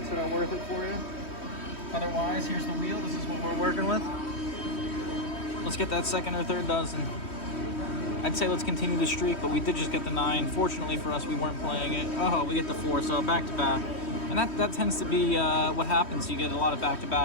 that are worth it for you. Otherwise, here's the wheel. This is what we're working with. Let's get that second or third dozen. I'd say let's continue the streak, but we did just get the 9. Fortunately for us, we weren't playing it. Oh, we get the 4, so back to back. And that tends to be what happens. You get a lot of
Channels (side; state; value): right; late; 3.1 ms